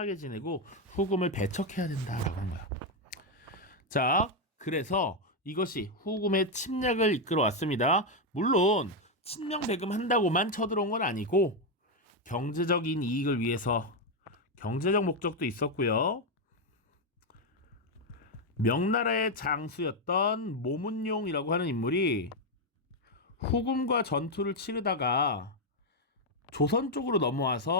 지내고 후금을 배척해야 된다라고 한 거야. 자, 그래서 이것이 후금의 침략을 이끌어 왔습니다. 물론 친명배금 한다고만 쳐들어온 건 아니고 경제적인 이익을 위해서 경제적 목적도 있었고요. 명나라의 장수였던 모문용이라고 하는 인물이 후금과 전투를 치르다가 조선 쪽으로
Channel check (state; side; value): normal; both; correlation 0.03